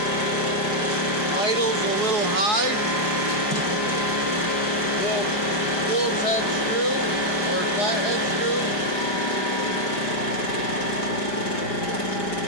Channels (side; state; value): right; late; 5.1 ms